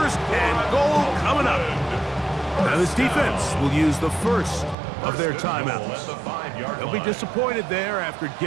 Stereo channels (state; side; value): drops out; left; at 4.8 s